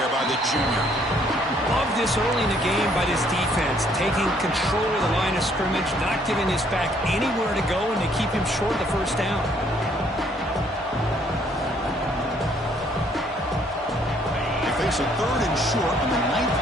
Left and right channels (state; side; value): normal; both; correlation 0.65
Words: by the junior. Love this early in the game by this defense, taking control of the line of scrimmage, not giving this back anywhere to go, and they keep him short of the first down. They face a 3rd and short on the